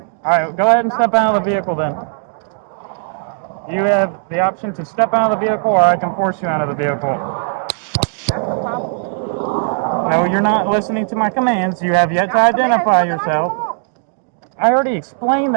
Alright, go ahead and step out of the vehicle then. You have the option to step out of the vehicle or I can force you out of the vehicle. No, you're not listening to my commands. You have yet to identify yourself. I already explained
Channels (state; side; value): silent; left; digital silence